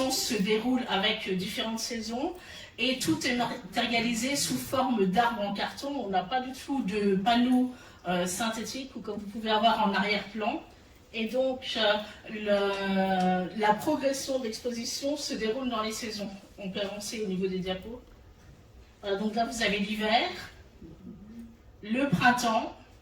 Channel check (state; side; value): identical; both; correlation 1.00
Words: se déroule avec différentes saisons et tout est matérialisé sous forme d'arbres en carton. On n'a pas du tout de panneaux synthétiques ou comme vous pouvez avoir en arrière-plan. Et donc la progression de l'exposition se déroule dans les saisons. On peut avancer au niveau des diapos. Donc là vous avez l'hiver, le printemps,